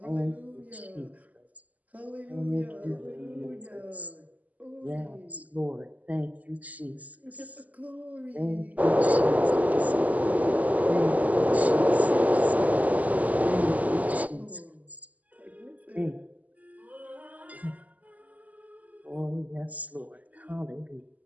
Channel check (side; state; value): left; late; 0.076 ms